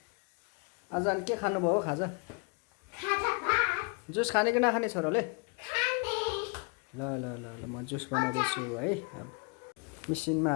आज अनि के खानु भयो खाजा? जुस खाने कि नखाने छोराले? ल ल ल ल म जुस बनाउँदैछु है। अब मिसिनमा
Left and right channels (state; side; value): quieter; right; 33.1 dB